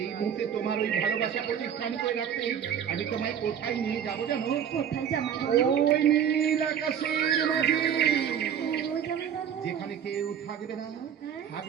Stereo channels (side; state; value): left; quieter; 8.7 dB